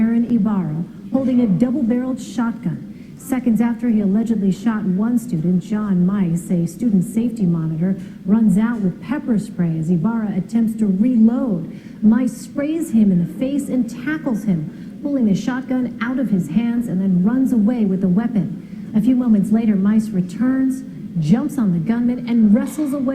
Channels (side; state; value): both; identical; correlation 1.00